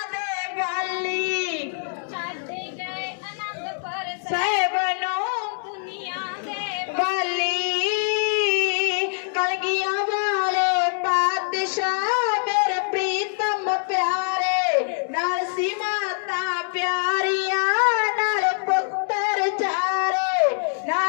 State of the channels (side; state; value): right; silent; 62 dB below the other